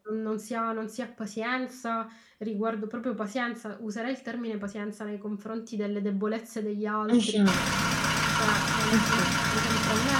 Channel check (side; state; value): both; identical; correlation 1.00